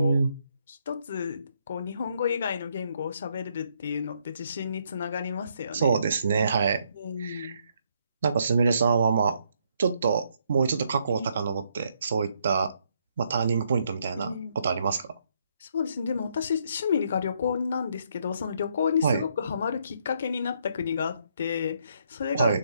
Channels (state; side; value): inverted; both; correlation -0.73